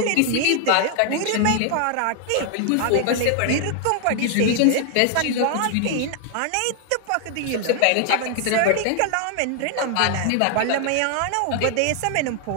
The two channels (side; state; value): both; different; correlation 0.00